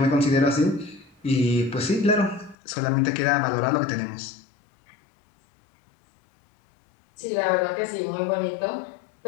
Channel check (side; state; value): right; drops out; at 2.6 s